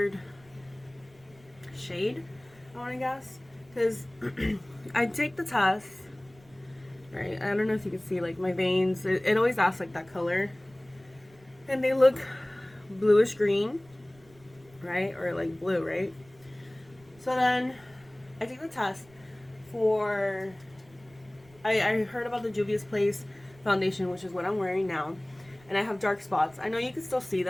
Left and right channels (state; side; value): noise; right; rumble, 28 dB below the sound